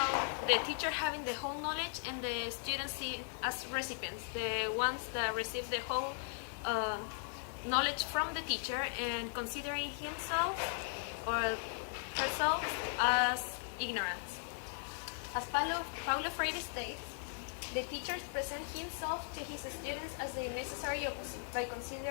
the teacher having the whole knowledge and the students as recipients, the ones that receive the whole knowledge from the teacher and considering himself or herself as ignorant. As Paulo Freire states, the teacher presents himself to his students as the necessary opposite by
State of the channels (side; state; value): right; silent; 52 dB below the other